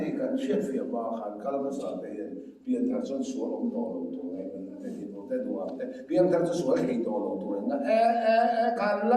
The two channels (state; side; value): identical; both; correlation 1.00